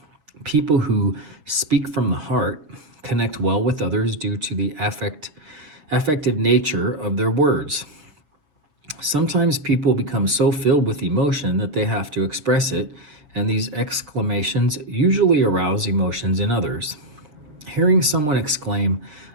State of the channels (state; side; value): late; left; 6.7 ms